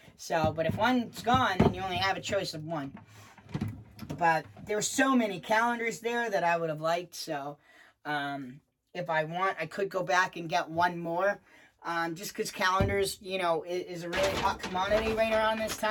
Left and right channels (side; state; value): both; identical; correlation 1.00